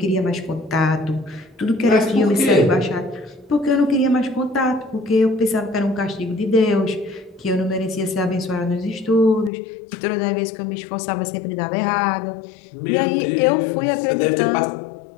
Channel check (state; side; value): drops out; right; at 9.5 s